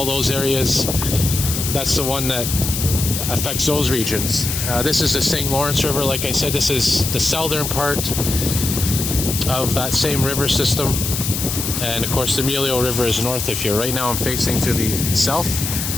those areas, that's the one that affects those regions. This is the St. Lawrence River. Like I said, this is the southern part of that same river system. And of course the Montreal River is north of here. Right now I'm facing to the south.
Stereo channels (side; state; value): left; noise; hiss, 3 dB below the sound